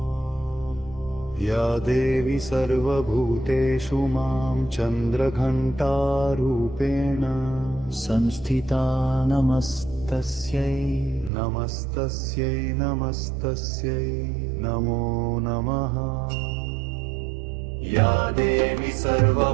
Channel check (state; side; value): drops out; left; at 11.3 s